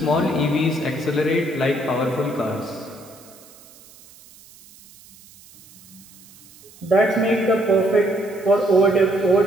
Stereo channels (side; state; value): right; noise; hiss, 24 dB below the sound